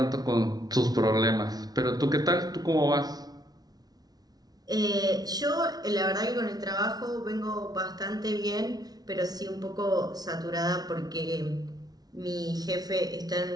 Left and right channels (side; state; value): left; late; 0.19 ms